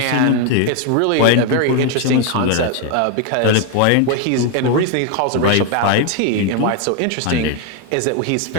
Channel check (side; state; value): both; different; correlation 0.01